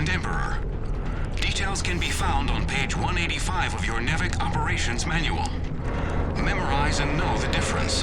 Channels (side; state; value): both; identical; correlation 1.00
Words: Emperor. Details can be found on page 185 of your NEVEC Operations Manual. Memorize and know the difference.